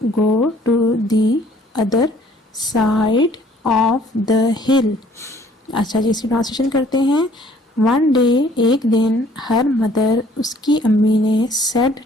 go to the other side of the hill. अच्छा जी, इसकी translation करते हैं। One day एक दिन, her mother उसकी अम्मी ने, सेड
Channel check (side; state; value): both; normal; correlation 0.58